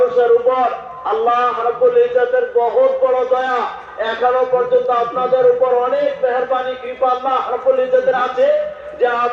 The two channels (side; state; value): both; identical; correlation 1.00